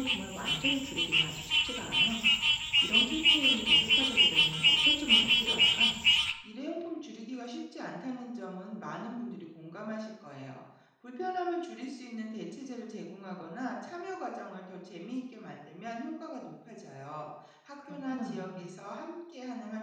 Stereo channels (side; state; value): both; identical; correlation 1.00